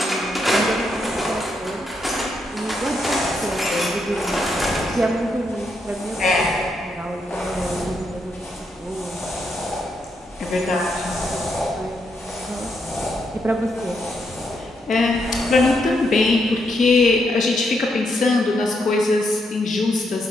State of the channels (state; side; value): normal; both; correlation 0.79